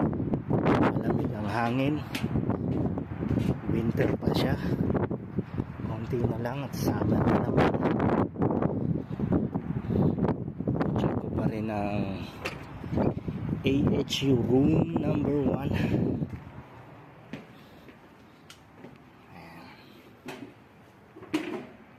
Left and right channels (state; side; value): identical; both; correlation 1.00